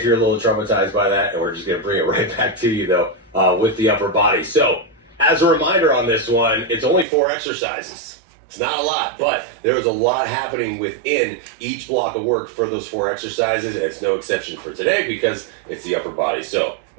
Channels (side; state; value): left; drops out; at 7.1 s